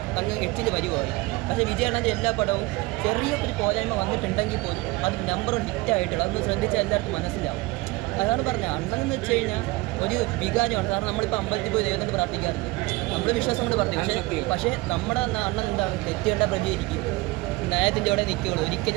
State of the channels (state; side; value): quieter; left; 22.1 dB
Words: അങ്ങ് എച്ചിൽ വരുവായി. പക്ഷേ വിജയണ്ണൻ്റെ എല്ലാ പടവും ചെറിയൊരു പോരായ്മ വന്നിട്ടുണ്ടെങ്കിൽ പോലും അത് നമ്പർ ഹിറ്റായിട്ടുള്ള അതൊന്ന് ശ്രദ്ധിച്ചാൽ എല്ലാവർക്കും മനസ്സിലാവും. അതാണ് പറഞ്ഞത്, അണ്ണൻ എന്ന് വെച്ച് കഴിഞ്ഞാൽ ഒരു വികാരമാണ്. കാരണം നമ്മളിപ്പോൾ അമ്പലത്തിൽ പോയി ദൈവത്തിൻ്റെ പ്രാർത്ഥിക്കാറുണ്ട്, നമ്മൾ വിശ്വാസം കൊണ്ട് പ്രാർത്ഥിക്കും. പക്ഷേ നമ്മുടെ അണ്ണൻ എന്താണ്, തെറ്റുകണ്ട പ്രതികരിക്കും, ന്യായത്തിൻ്റെ അവിടെ നിൽക്കുകയുള്ളൂ.